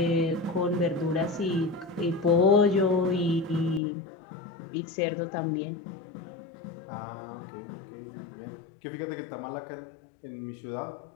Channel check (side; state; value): right; drops out; at 3.8 s